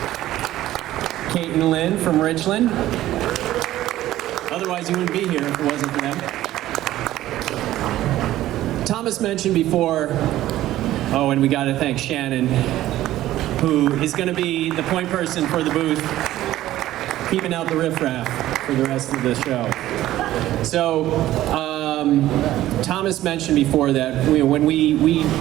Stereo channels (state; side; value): quieter; left; 14.4 dB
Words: Kate and Lynn from Richland. Otherwise, you wouldn't be here if it wasn't for them. Thomas mentioned before, oh, and we got to thank Shannon, who is going to be the point person for the booth, keeping out the riffraff for the rest of the show. So, Thomas mentioned before that when we